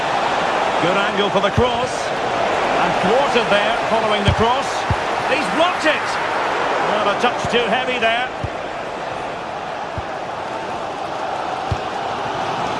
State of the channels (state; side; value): identical; both; correlation 1.00